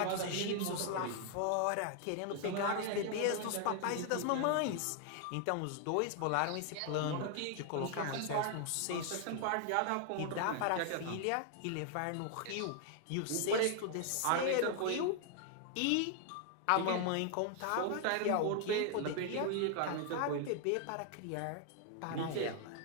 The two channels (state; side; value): different; both; correlation 0.00